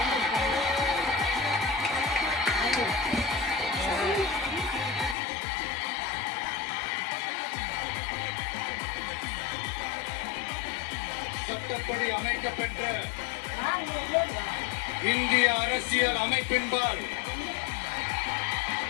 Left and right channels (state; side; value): drops out; right; at 5.2 s